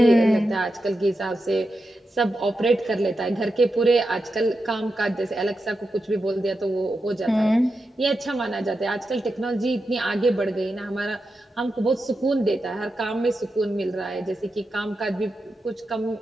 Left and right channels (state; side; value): normal; both; correlation 0.88